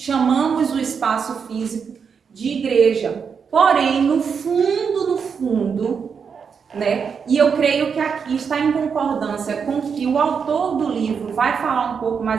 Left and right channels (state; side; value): quieter; left; 6.3 dB